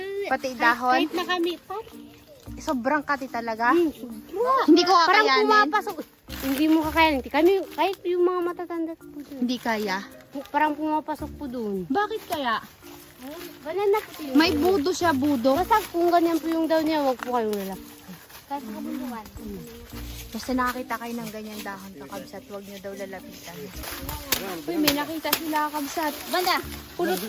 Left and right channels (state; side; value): identical; both; correlation 1.00